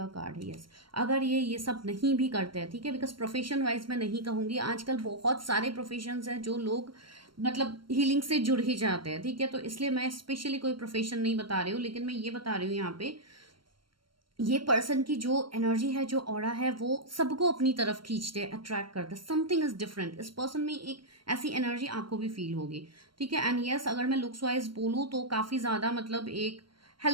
कार्ड है। यस, अगर ये सब नहीं भी करते हैं, ठीक है? बिकॉज प्रोफेशन वाइज मैं नहीं कहूंगी, आजकल बहुत सारे प्रोफेशंस हैं जो लोग मतलब हीलिंग से जुड़ ही जाते हैं, ठीक है? तो इसलिए मैं स्पेशली कोई प्रोफेशन नहीं बता रही हूँ, लेकिन मैं ये बता रही हूँ यहाँ पे ये पर्सन की जो एनर्जी है, जो ऑरा है, वो सबको अपनी तरफ खींचते हैं, अट्रैक्ट करते हैं। Something is different. इस पर्सन में एक ऐसी एनर्जी आपको भी फील होगी, ठीक है? एंड यस, अगर मैं लुक्स वाइज बोलूँ तो काफी ज्यादा मतलब एक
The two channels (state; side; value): late; left; 0.73 ms